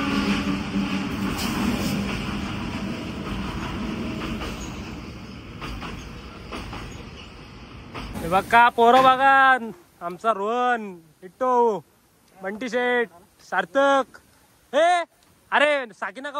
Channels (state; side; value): identical; both; correlation 1.00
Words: बघा पोरं बघा आमचा रोहन इट्टो बंटी शेठ सार्थक. हे अरे साकिना